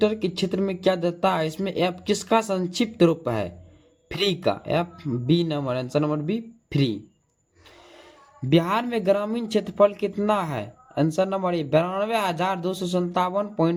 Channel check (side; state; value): both; identical; correlation 1.00